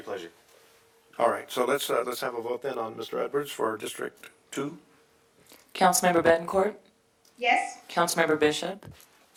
pleasure. All right, so let's have a vote then on Mr. Edwards for District 2. Councilmember Bettencourt, Yes? Councilmember Bishop,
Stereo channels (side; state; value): both; identical; correlation 1.00